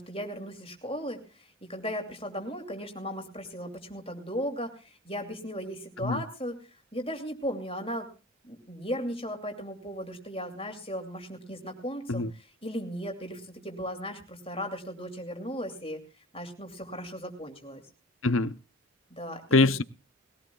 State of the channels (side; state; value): both; normal; correlation 0.38